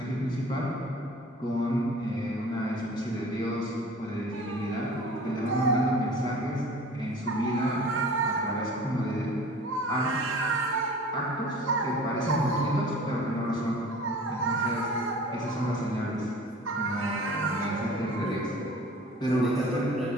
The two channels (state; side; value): normal; both; correlation 0.44